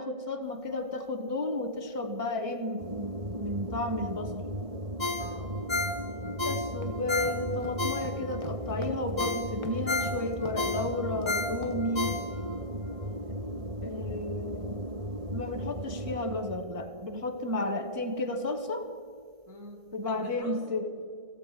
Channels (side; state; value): left; late; 1.6 ms